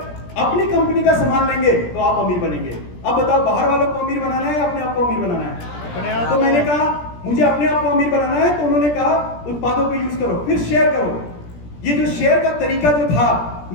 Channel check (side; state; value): right; late; 17 ms